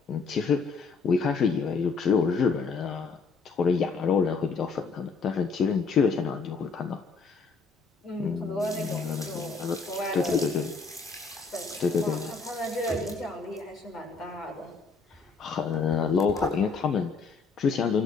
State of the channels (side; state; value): right; quieter; 4.7 dB